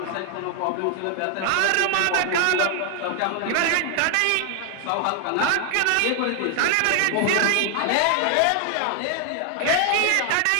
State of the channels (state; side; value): different; both; correlation 0.00